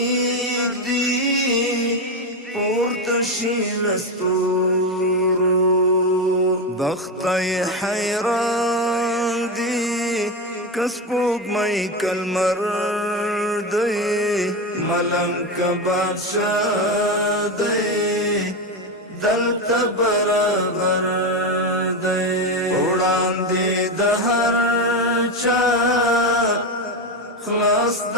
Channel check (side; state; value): both; normal; correlation 0.14